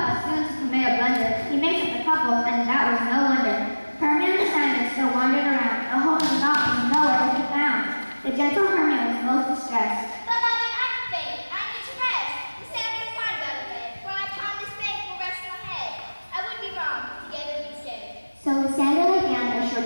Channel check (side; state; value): both; inverted; correlation -1.00